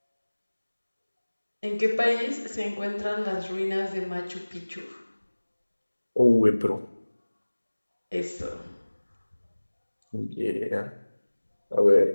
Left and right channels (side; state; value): both; inverted; correlation -1.00